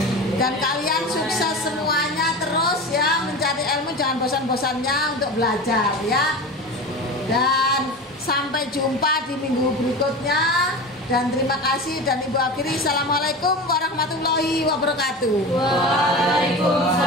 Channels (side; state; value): both; normal; correlation 0.29